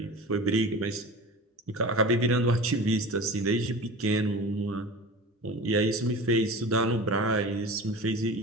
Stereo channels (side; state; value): both; normal; correlation 0.34